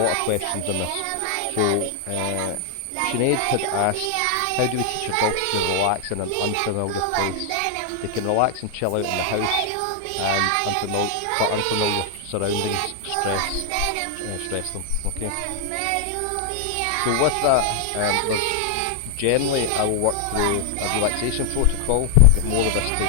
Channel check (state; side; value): different; both; correlation 0.00